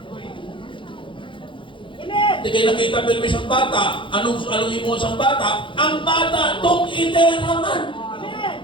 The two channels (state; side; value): late; right; 0.24 ms